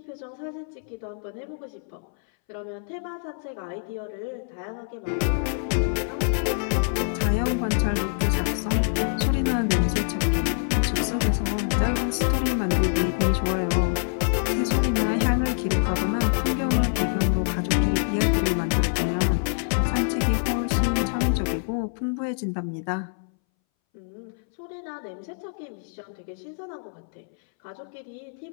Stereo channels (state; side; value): silent; right; 61 dB below the other